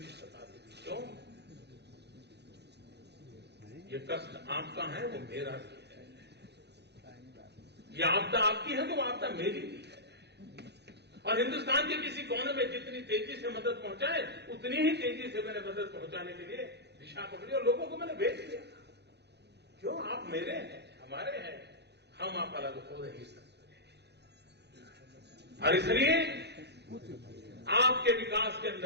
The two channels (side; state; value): left; late; 0.49 ms